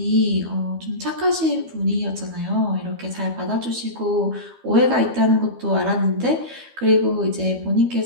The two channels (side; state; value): left; late; 12 ms